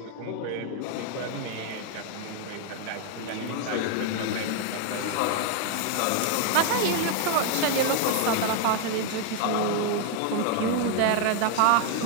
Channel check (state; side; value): different; both; correlation 0.00